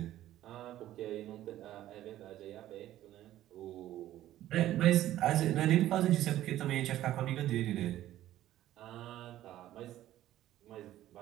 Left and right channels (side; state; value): left; quieter; 13.6 dB